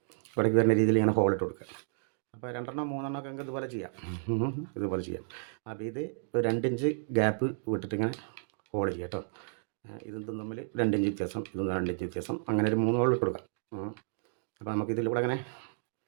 ഇവിടേക്ക് വരുന്ന രീതിയിൽ ഇങ്ങനെ ഹോളിട്ട് കൊടുക്കുക. അപ്പോൾ 2 3 ഒക്കെ ഇതുപോലെ ചെയ്യാം. അപ്പോൾ ഇത് ഒരു 2 ഇഞ്ച് ഗ്യാപ്പ് വിട്ടിട്ട് ഇങ്ങനെ ഹോൾ ചെയ്യാം കേട്ടോ. ഇതും തമ്മിൽ 2 ഇഞ്ച് വ്യത്യാസം, ഇതും 2 ഇഞ്ച് വ്യത്യാസം, അങ്ങനെ ഒരു 3 ഹോൾ ഇട്ട് കൊടുക്കാം. അപ്പോൾ നമുക്ക് ഇതിലൂടെ അങ്ങനെ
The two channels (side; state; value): left; silent; 56 dB below the other